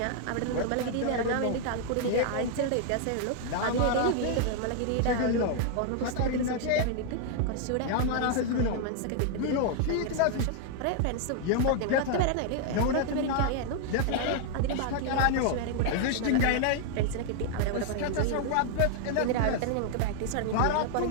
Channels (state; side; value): different; both; correlation 0.00